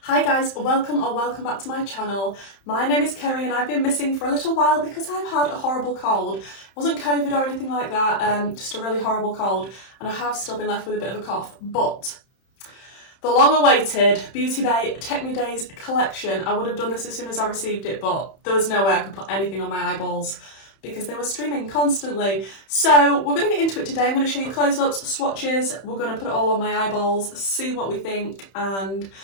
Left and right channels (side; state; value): right; late; 31 ms